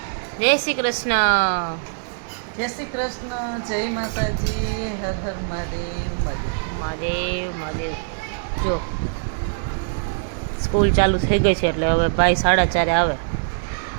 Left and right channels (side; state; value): left; silent; digital silence